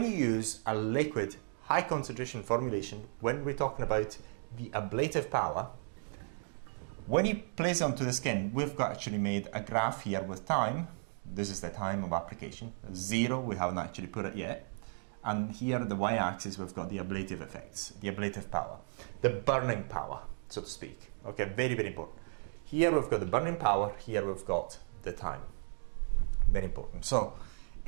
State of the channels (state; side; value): silent; left; 55 dB below the other